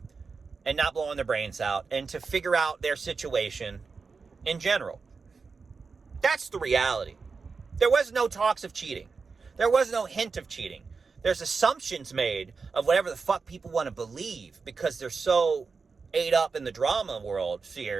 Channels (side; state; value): left; quieter; 4.8 dB